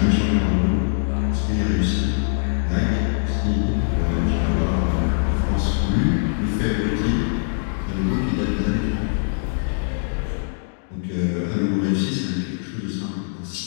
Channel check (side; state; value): right; silent; digital silence